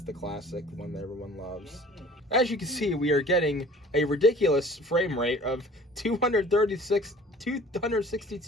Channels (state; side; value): normal; both; correlation 0.47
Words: classic, the one that everyone loves. As you can see, we are getting a ridiculous frame rate of 262.